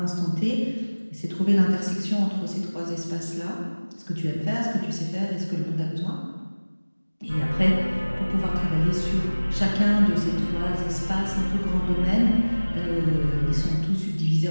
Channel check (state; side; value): inverted; both; correlation -1.00